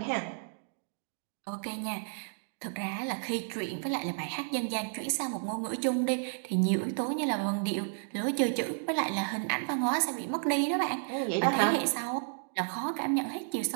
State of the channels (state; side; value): silent; left; digital silence